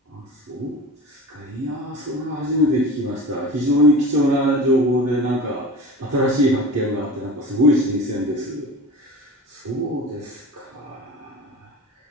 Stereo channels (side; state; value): both; normal; correlation 0.34